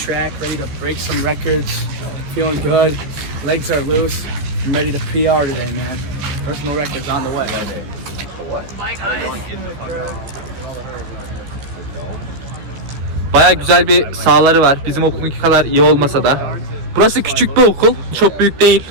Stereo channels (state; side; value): late; left; 14 ms